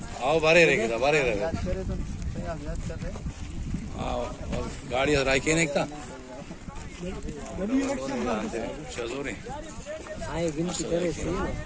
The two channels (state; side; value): identical; both; correlation 1.00